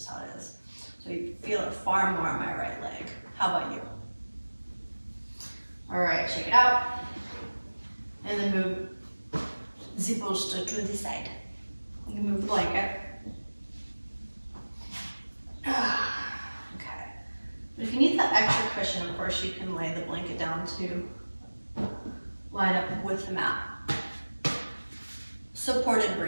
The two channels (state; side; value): inverted; both; correlation -1.00